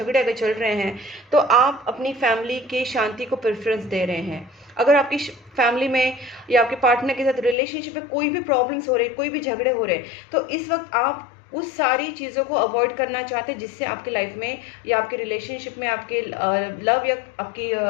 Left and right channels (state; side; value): drops out; right; at 7.6 s